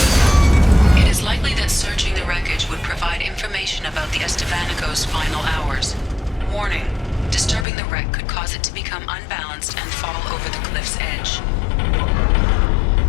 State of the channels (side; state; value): right; drops out; at 7.7 s